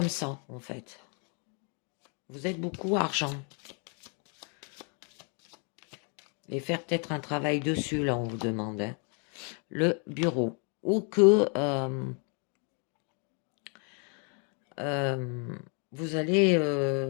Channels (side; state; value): right; quieter; 38.0 dB